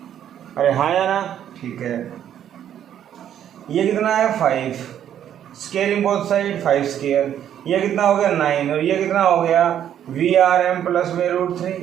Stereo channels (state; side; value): quieter; left; 10.1 dB